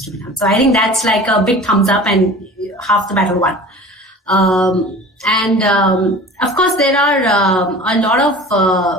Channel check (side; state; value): both; normal; correlation 0.40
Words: to be done. So I think that's like a big thumbs up and half the battle won. Of course, there are a lot of